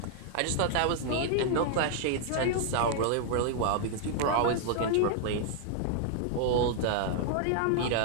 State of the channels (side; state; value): both; different; correlation -0.01